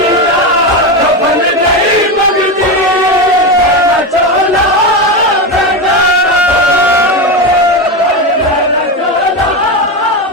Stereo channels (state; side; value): normal; both; correlation 0.15